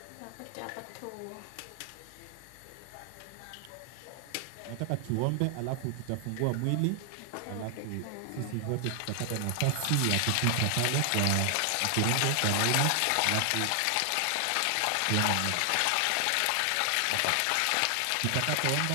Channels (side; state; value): both; different; correlation 0.00